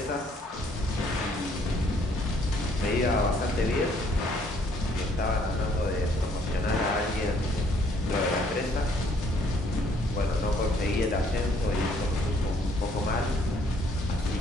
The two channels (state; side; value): normal; both; correlation 0.65